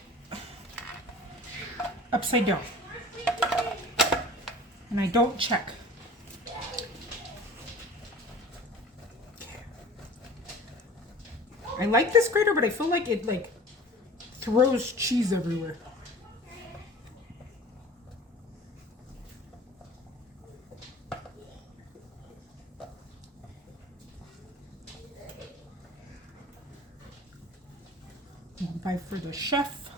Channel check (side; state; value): both; normal; correlation 0.42